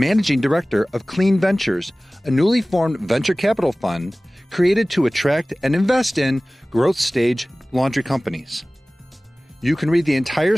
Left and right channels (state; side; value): normal; both; correlation 0.98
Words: Director of Clean Ventures, a newly formed venture capital fund created to attract and invest in growth stage laundry companies. You can read the entire